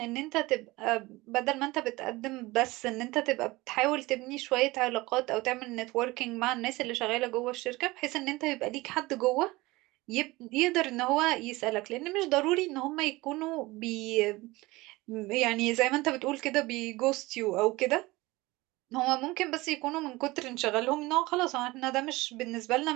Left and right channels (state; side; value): quieter; left; 21.0 dB